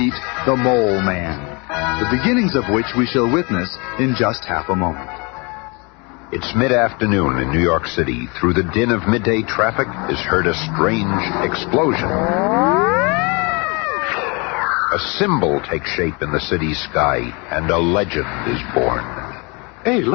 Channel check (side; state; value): right; quieter; 29.7 dB